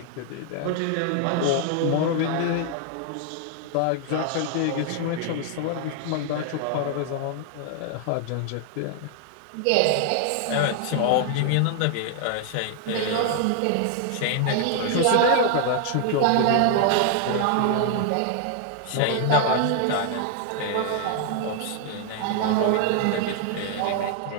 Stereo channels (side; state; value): both; different; correlation 0.00